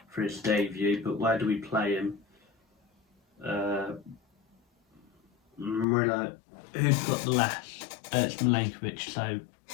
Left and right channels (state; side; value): drops out; right; at 5.9 s